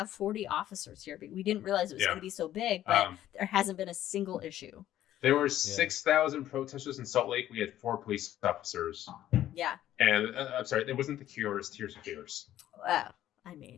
40 officers here. We didn't realize it was going to be so big, but there hasn't been a single issue. There were 6,000 protesters in Salt Lake. We had 4 police officers. Yeah. And I'm sorry, it wasn't the Cure, it was Tears for Fears. Well, I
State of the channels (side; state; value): right; quieter; 12.7 dB